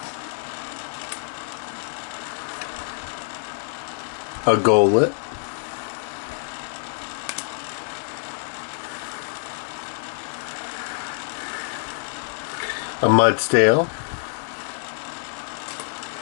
a Golett, a Mudstale,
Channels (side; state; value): right; silent; digital silence